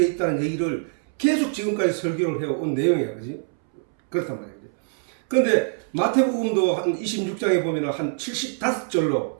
있다는 얘기를 계속 지금까지 설교를 해온 내용이야, 그지? 그렇단 말이야. 그런데 마태복음도 한 26장에 보면 한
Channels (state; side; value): silent; left; 63 dB below the other